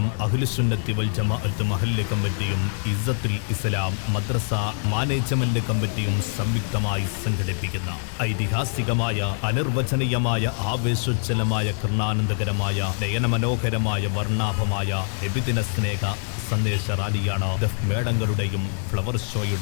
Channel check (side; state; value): right; silent; 60 dB below the other